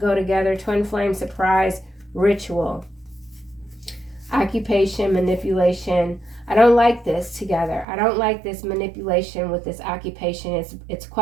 together. Twin flame, surprise, ritual. Occupation, manipulation. I don't like this together. I don't like this manipulation with this occupation. It's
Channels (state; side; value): drops out; left; at 7.9 s